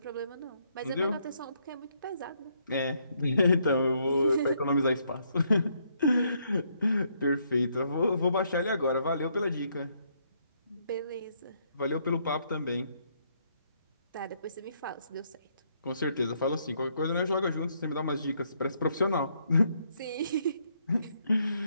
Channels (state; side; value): inverted; both; correlation -0.73